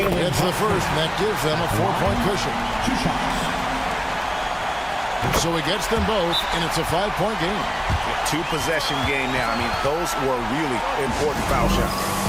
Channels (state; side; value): identical; both; correlation 1.00